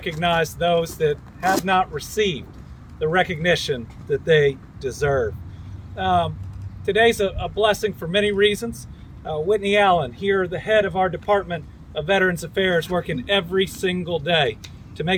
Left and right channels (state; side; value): identical; both; correlation 1.00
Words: those that have not received the recognition that they deserve. Today's a blessing for many reasons. Whitney Allen, here, the head of our Department of Veterans Affairs, working every single day to